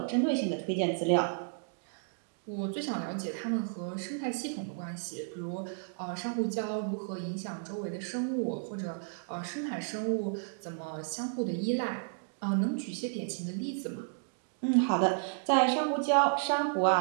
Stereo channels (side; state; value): left; silent; digital silence